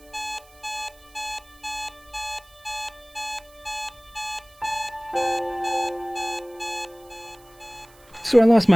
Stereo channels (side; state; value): right; noise; hiss, 27 dB below the sound